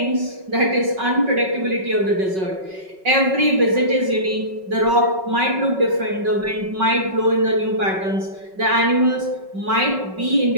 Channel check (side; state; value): left; late; 5.3 ms